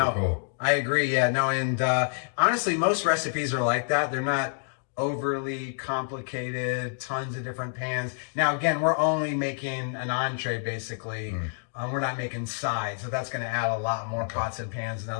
cool. I agree. Yeah, no, and honestly, most recipes are like that. They're not overly complicated, tons of different pans. Now, again, we're only making an entree, basically. We're not making sides, so that's going to add a lot more pots and pans and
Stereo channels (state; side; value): silent; right; digital silence